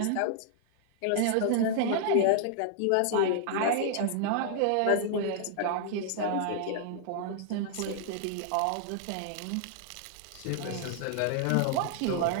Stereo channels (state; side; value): different; both; correlation -0.01